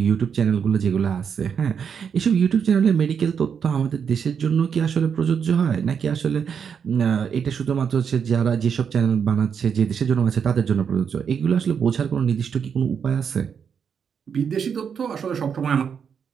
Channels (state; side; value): quieter; left; 7.1 dB